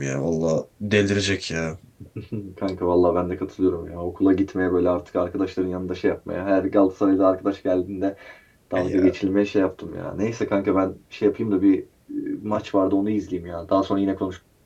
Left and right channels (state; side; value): identical; both; correlation 1.00